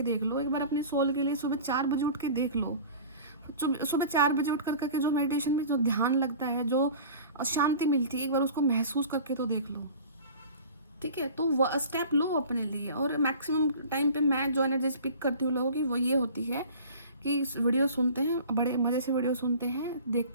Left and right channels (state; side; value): inverted; both; correlation -0.41